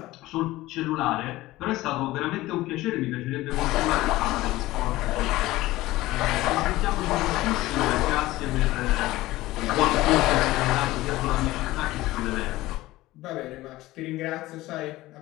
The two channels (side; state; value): right; quieter; 17.7 dB